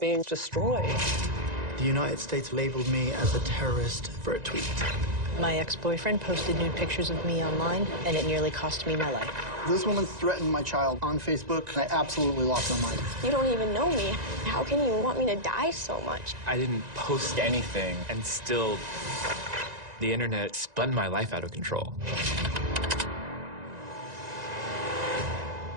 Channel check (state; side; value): late; left; 1.9 ms